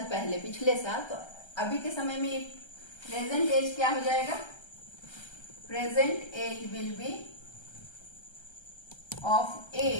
पहले पिछले साल, तो अभी के समय में प्रेजेंट एज क्या हो जाएगा, present age will be of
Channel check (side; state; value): right; late; 1.3 ms